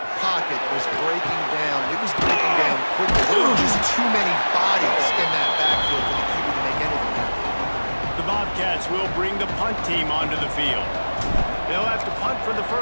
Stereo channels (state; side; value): inverted; both; correlation -1.00